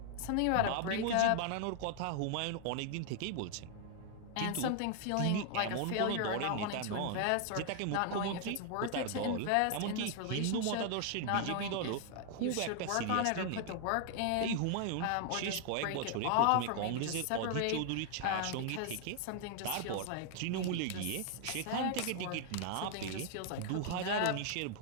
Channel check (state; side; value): different; both; correlation 0.00